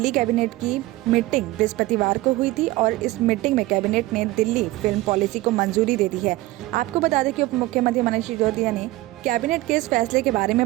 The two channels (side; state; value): left; quieter; 18.3 dB